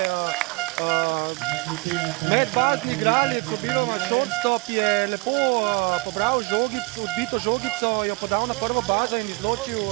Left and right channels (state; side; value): quieter; left; 27.1 dB